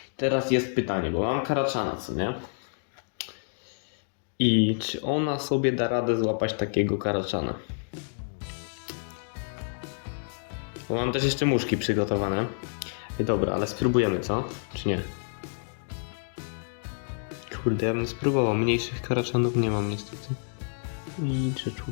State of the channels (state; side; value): silent; right; digital silence